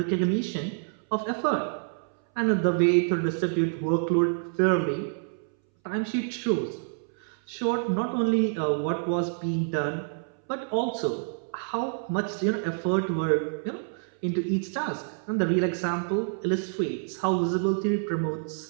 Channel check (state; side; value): silent; left; 60 dB below the other